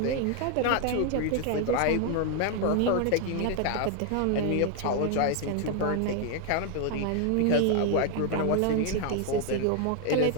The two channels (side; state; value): both; different; correlation 0.01